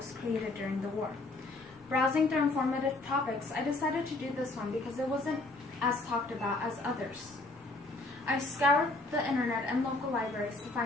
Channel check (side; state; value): right; quieter; 3.0 dB